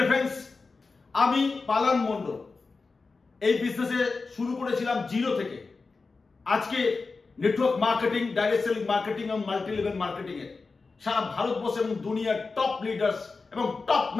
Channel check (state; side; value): quieter; right; 4.2 dB